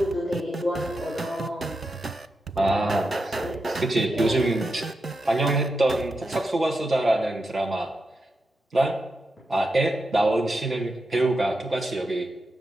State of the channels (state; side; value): normal; both; correlation 0.87